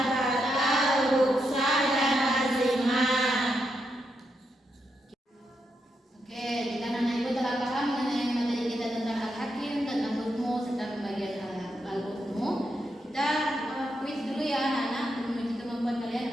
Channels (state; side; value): normal; both; correlation 0.83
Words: batal, rukhsah dan azimah. Oke, jika anak ibu telah paham mengenai materi kita tentang al-hakim, tentang hukum serta pembagian al-hukum, kita kuis dulu ya anak-anak menuju kemampuan